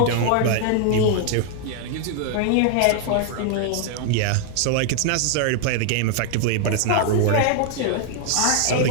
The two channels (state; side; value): different; both; correlation 0.00